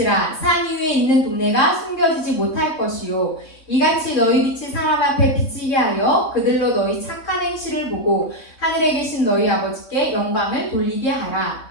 산 위에 있는 동네가 숨겨지지 못할 것이요, 이같이 너희 빛이 사람 앞에 비치게 하여 그들로 너희 착한 행실을 보고 하늘에 계신 너희 아버지께 영광을 돌리게 하라.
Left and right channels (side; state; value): right; late; 3.5 ms